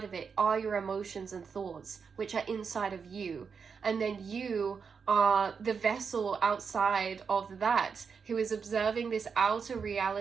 of it are your emotions and thoughts, which are inside of you. And then you are the vessel outside of that who is observing this outer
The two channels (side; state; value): left; quieter; 5.9 dB